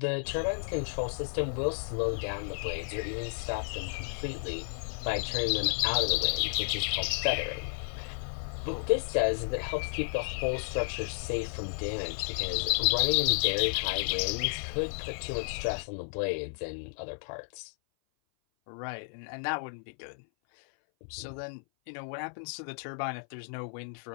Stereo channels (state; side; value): silent; right; 56 dB below the other